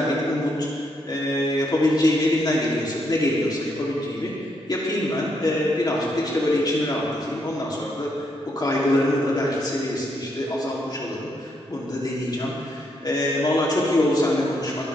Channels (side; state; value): both; normal; correlation 0.76